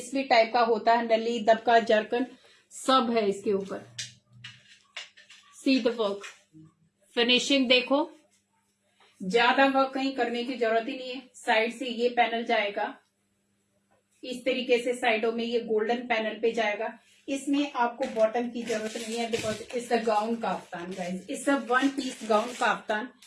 भी टाइप का होता है, नली, दबका, जरकन, सब है इसके ऊपर। सी द वर्क, फिनिशिंग देखो, ज्यादा वर्क कहीं करने की जरूरत ही नहीं है। साइड से ये पैनल जाएगा इस तरीके से, साइडों में ये गोल्डन पैनल पे जाएगा। इसमें आपको बॉटम की जरूरत नहीं है, because it's a gown kaftan guys, it's a 1 piece gown kaftan.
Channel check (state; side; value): identical; both; correlation 1.00